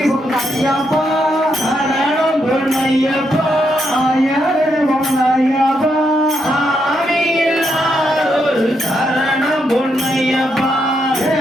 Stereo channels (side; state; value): both; normal; correlation 0.79